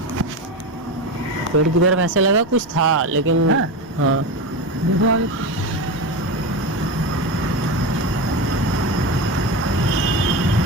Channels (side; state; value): both; normal; correlation 0.20